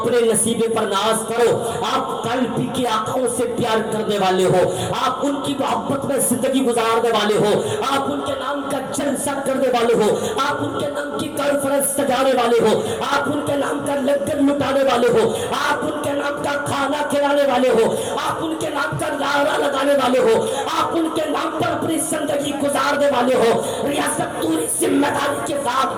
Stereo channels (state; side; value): noise; right; hum, 30 dB below the sound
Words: نصیبے پر ناز کرو. آپ قلب کے آقاؤں سے پیار کرنے والے ہو، آپ ان کی محبت میں زندگی گزارنے والے ہو، آپ ان کے نام کا جلسہ کرنے والے ہو، آپ ان کے نام کی کانفرنس سجانے والے ہو، آپ ان کے نام کا لنگر لٹانے والے ہو، آپ ان کے نام کا کھانا کھلانے والے ہو، آپ ان کے نام کا نعرہ لگانے والے ہو، آپ ان کے نام پر اپنی زندگی گزارنے والے ہو. ریاست پوری ذمہ داری کے ساتھ